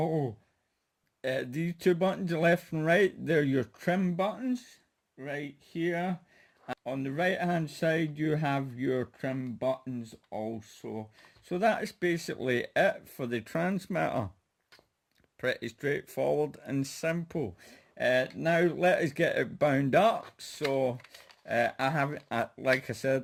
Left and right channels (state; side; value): identical; both; correlation 1.00